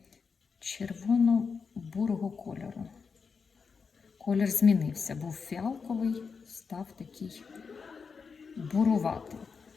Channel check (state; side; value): quieter; right; 5.4 dB